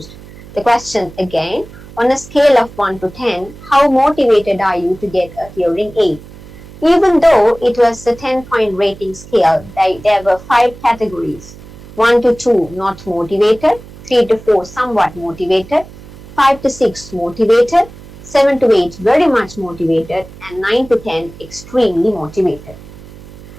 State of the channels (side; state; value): right; noise; hum, 18 dB below the sound